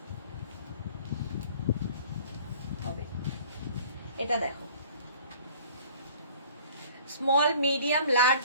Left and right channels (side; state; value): both; inverted; correlation -0.50